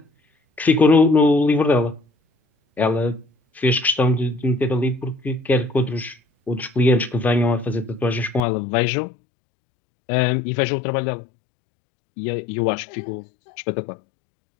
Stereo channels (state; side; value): drops out; right; at 8.4 s